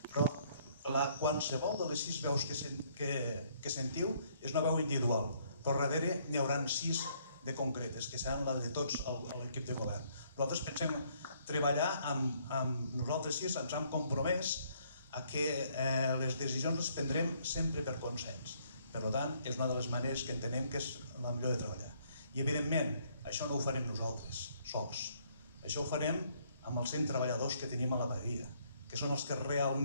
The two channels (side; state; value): both; inverted; correlation -0.67